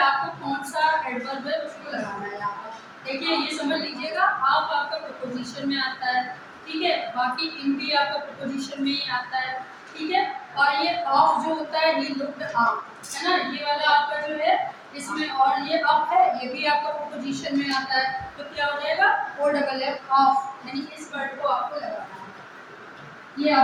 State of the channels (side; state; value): both; identical; correlation 1.00